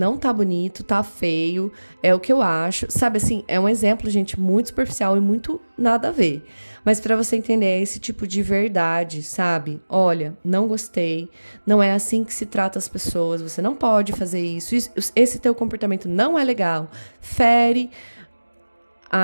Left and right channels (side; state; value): both; inverted; correlation -1.00